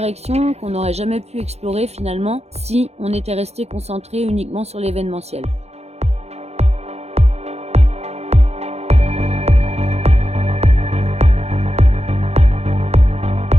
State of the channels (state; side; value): late; left; 0.31 ms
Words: qu'on n'aurait jamais pu explorer finalement si on était resté concentré uniquement sur l'événementiel.